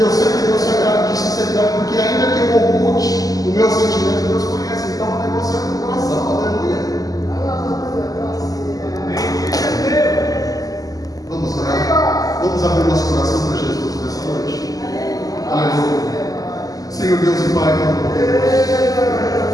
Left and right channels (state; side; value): late; right; 0.17 ms